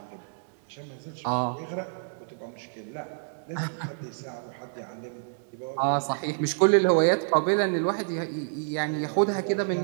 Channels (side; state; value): left; silent; 59 dB below the other